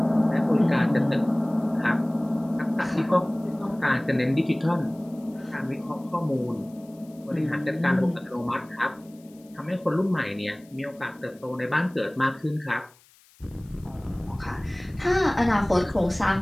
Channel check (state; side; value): noise; left; hiss, 29 dB below the sound